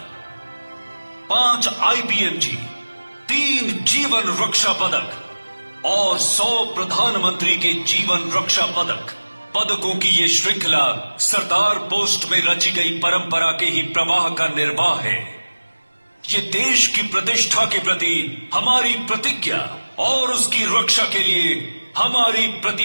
5 आईपीएमजी, 3 जीवन रक्षा पदक और 100 प्रधानमंत्री के जीवन रक्षा पदक। पदकों की ये श्रृंखला सरदार पोस्ट में रची गई परंपरा के ही प्रवाह का निर्वाह है। ये देश की प्रतिष्ठा के प्रति हमारी प्रतिज्ञा और उसकी रक्षा के लिए हमारी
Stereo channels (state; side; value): inverted; both; correlation -1.00